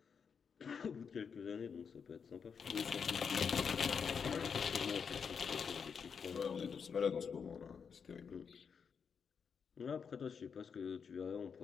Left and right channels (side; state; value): right; quieter; 6.4 dB